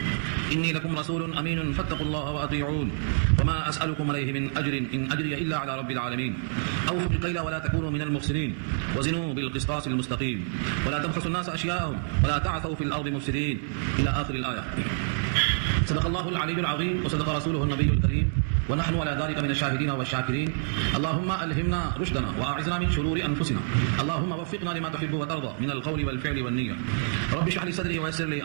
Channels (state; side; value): silent; left; digital silence